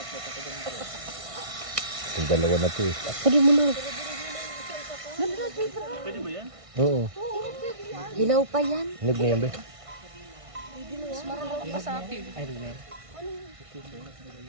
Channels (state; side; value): late; left; 1.5 ms